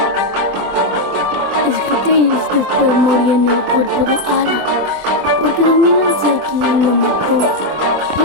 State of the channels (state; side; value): late; left; 24 ms